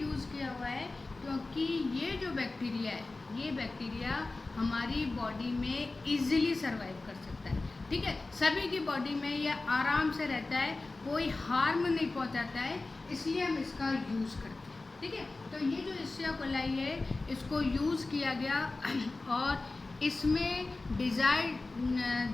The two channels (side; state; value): right; quieter; 3.3 dB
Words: किया हुआ है क्योंकि ये जो बैक्टीरिया है, ये बैक्टीरिया हमारी बॉडी में इजीली सर्वाइव कर सकता है। ठीक है, सभी की बॉडी में ये आराम से रहता है, कोई हार्म नहीं पहुंचाता है, इसलिए हम इसका यूज़ करते हैं। ठीक है। तो ये जो इश्चिया कोलाई है इसको यूज़ किया गया और इसमें